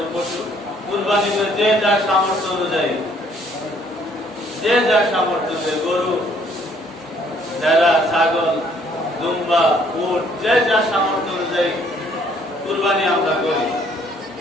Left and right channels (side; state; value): both; normal; correlation 0.63